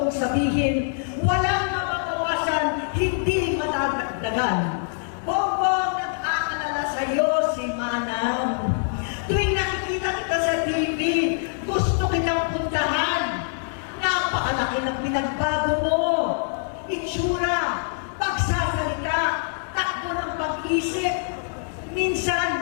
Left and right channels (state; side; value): silent; right; digital silence